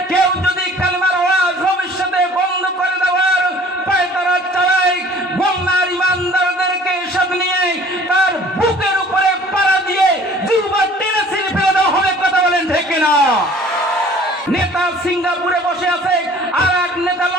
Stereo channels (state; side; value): normal; both; correlation 0.51